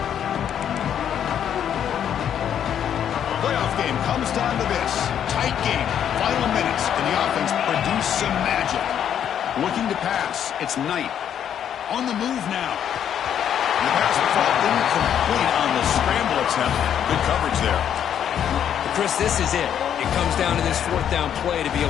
Comes down to this. Tight game. Final minutes. Can the offense produce some magic? strategic. Looking to pass. It's Knight. On the move now. The pass will fall incomplete on the scramble attempt. Good coverage there. Chris, this is it. It comes down to this fourth down play to be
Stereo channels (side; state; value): right; quieter; 9.3 dB